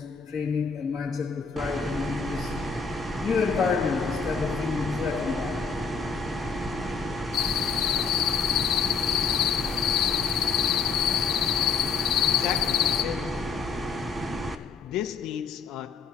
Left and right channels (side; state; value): right; quieter; 5.3 dB